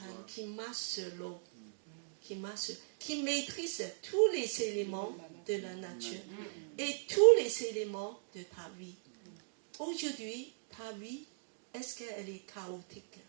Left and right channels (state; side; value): silent; left; digital silence